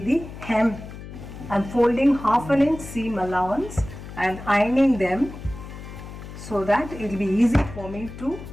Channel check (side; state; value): left; noise; hum, 13 dB below the sound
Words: the hem. I'm folding half an inch seam allowance and ironing them so that it will be easy for me to